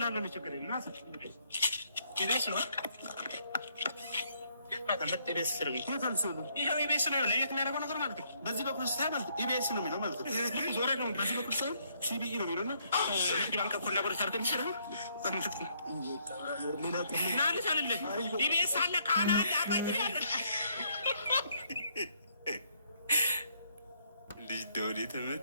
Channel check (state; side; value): inverted; both; correlation -0.70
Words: ነው። ችግር የለም። ናስ ይቤስ ነው ኢቢኤስ ነው የሚያደርገው ነገር ማለት ነው። በዚህ በኩል ስታይ ማለት ኢቢኤስ ነው የሚለው ማለት ነው። ዞረ ነው በዚህ በኩል ሰው ሲቢኢ ነው የሚለው እና ባንክ ኮላቦሬት አድርገን ይችላል። ናልሽ አለለ ኢቢኤስ አለ ቃና አለ አባይ ያለ ልጅ ደውል